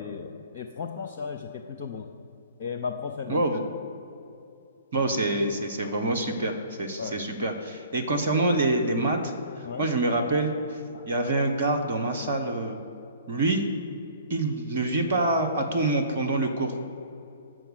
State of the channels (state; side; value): inverted; both; correlation -0.49